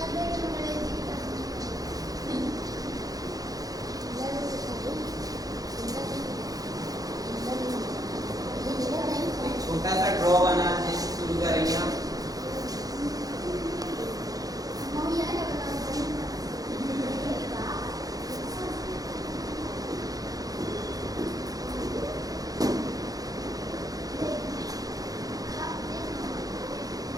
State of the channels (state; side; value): late; left; 0.18 ms